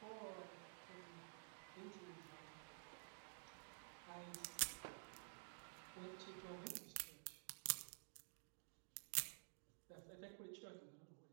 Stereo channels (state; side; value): silent; left; digital silence